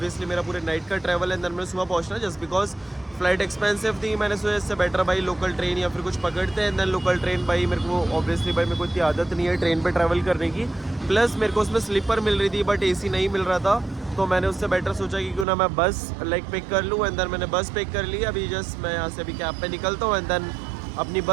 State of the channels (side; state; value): left; drops out; at 15.5 s